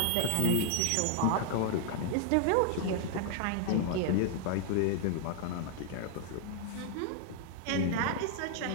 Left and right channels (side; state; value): both; different; correlation 0.00